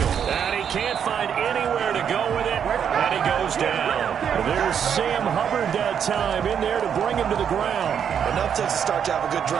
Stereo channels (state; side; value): quieter; left; 8.0 dB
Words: And he can't find anywhere to go with it, and he goes down. There's Sam Hubbard that time in there to bring him to the ground. Enough takes to start to have a good